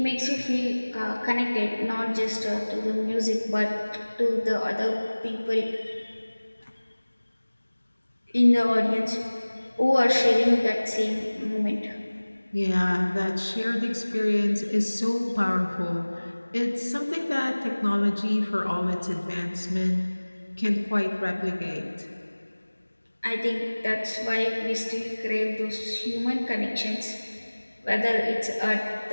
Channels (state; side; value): inverted; both; correlation -1.00